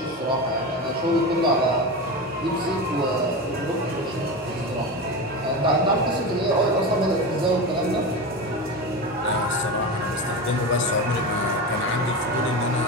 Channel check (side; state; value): both; normal; correlation 0.22